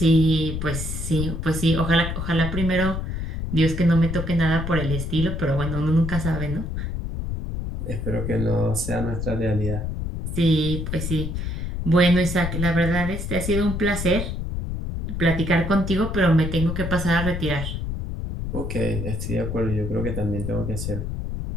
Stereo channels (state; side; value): noise; left; rumble, 4 dB below the sound